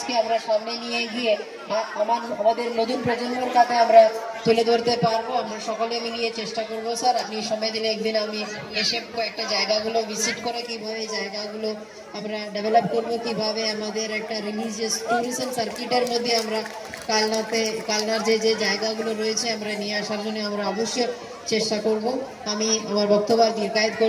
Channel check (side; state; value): both; identical; correlation 1.00